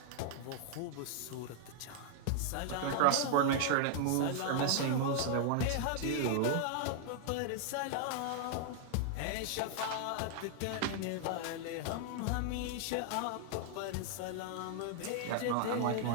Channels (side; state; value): both; different; correlation -0.01